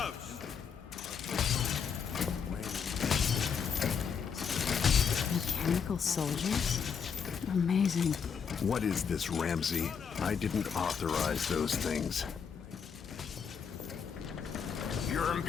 Mechanical soldiers? Amazing. What is this, Ramsay? I didn't authorize those things. Your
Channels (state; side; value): quieter; right; 6.8 dB